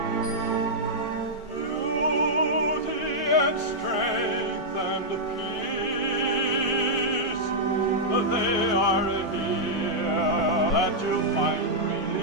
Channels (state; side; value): normal; both; correlation -0.07